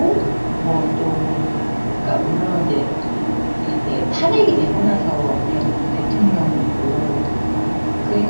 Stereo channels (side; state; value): both; inverted; correlation -1.00